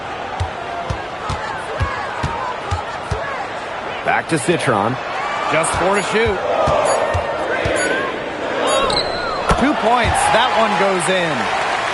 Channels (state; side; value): identical; both; correlation 1.00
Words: Back to Citron. Just 4 to shoot. 2 points. That one goes